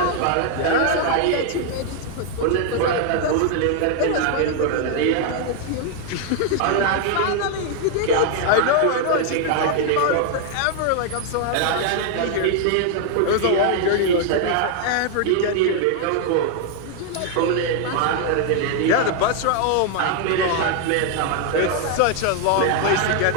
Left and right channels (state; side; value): different; both; correlation 0.00